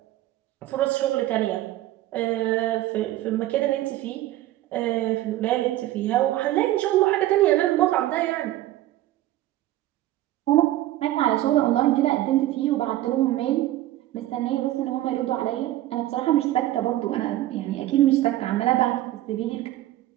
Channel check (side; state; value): left; quieter; 15.0 dB